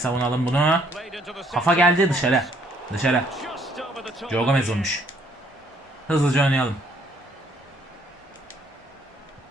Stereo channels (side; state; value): both; normal; correlation 0.65